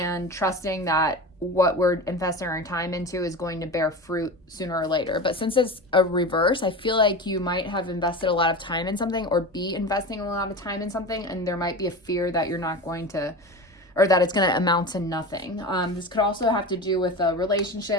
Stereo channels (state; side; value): normal; both; correlation 0.28